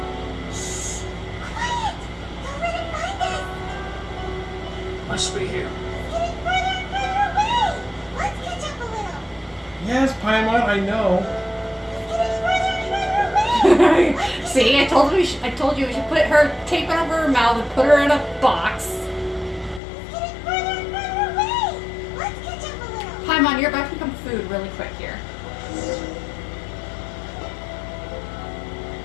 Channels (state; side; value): drops out; right; at 19.8 s